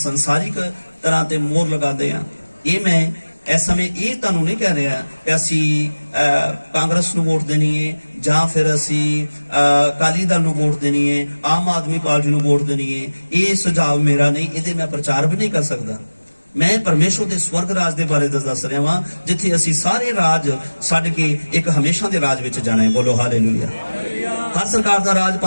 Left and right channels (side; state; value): both; inverted; correlation -1.00